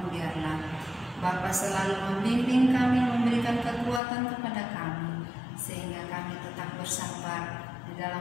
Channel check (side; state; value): right; drops out; at 4.0 s